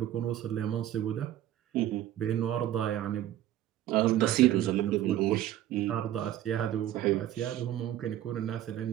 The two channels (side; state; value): left; quieter; 12.6 dB